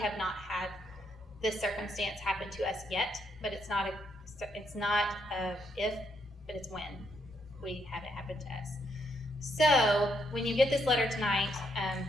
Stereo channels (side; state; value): both; normal; correlation 0.76